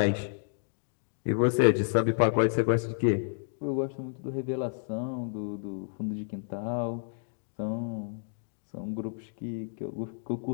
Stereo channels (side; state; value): right; silent; digital silence